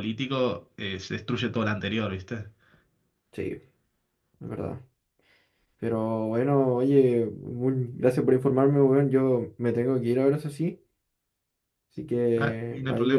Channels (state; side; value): identical; both; correlation 1.00